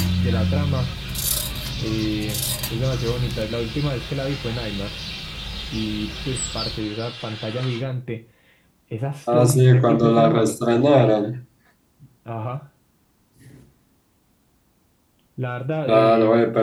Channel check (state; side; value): identical; both; correlation 1.00